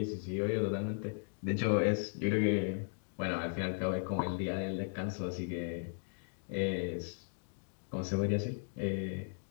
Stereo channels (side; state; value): right; silent; digital silence